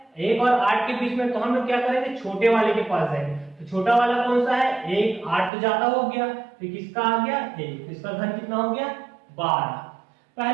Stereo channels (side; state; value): left; drops out; at 5.5 s